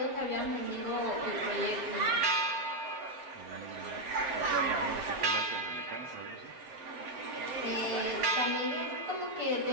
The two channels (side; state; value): left; late; 7.8 ms